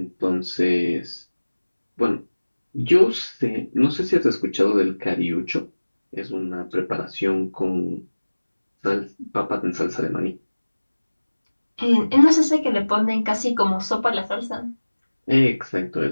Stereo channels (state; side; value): inverted; both; correlation -1.00